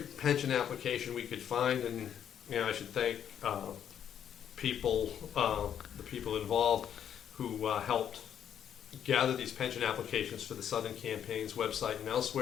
application we could find, and I should thank the people involved who helped gather these pension applications for the Southern Campaign's website and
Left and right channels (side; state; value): right; quieter; 9.2 dB